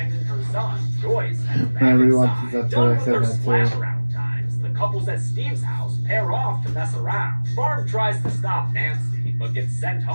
her son. Joyce has When I back rewatched inside. this episode, Done I with said their that too. splash around times, the couples at Steve's house pair off to mess around. Barb tries to stop Nancy, but gets sent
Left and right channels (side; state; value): both; inverted; correlation -1.00